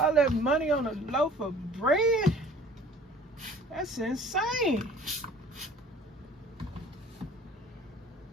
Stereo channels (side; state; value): both; normal; correlation 0.49